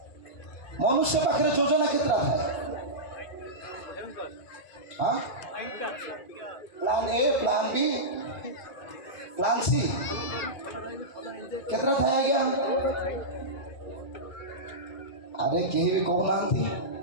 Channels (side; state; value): right; late; 2.5 ms